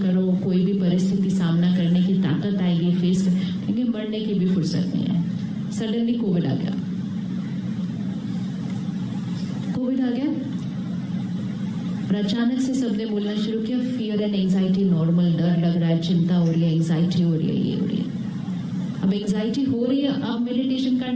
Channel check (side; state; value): both; identical; correlation 1.00